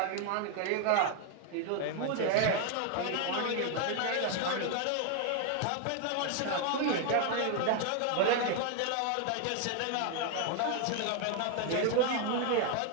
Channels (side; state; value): both; different; correlation 0.00